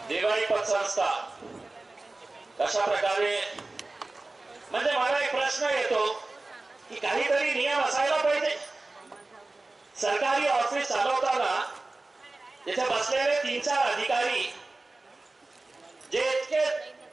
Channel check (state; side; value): quieter; left; 3.1 dB